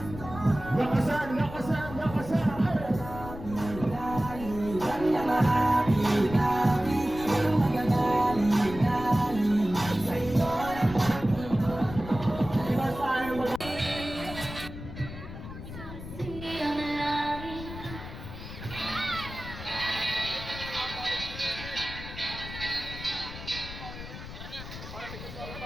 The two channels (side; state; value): left; noise; rumble, 11 dB below the sound